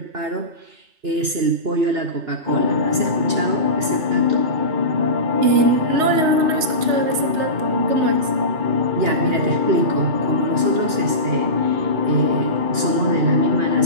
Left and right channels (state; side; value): late; left; 2.9 ms